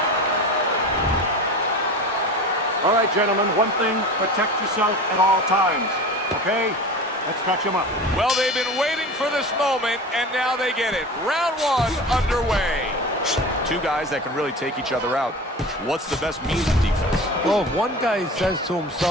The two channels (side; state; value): both; normal; correlation 0.33